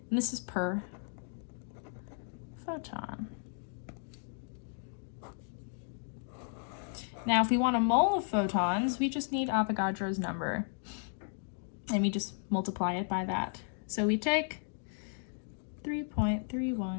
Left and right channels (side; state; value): right; silent; 55 dB below the other